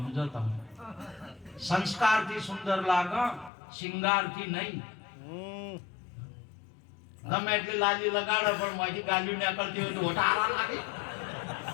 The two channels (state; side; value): drops out; right; at 3.5 s